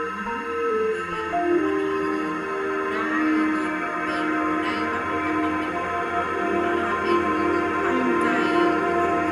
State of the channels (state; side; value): identical; both; correlation 1.00